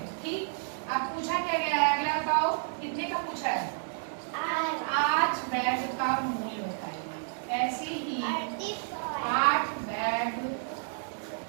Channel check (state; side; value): silent; left; digital silence